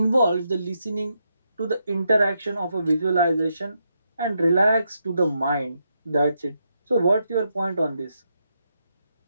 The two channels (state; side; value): inverted; both; correlation -0.81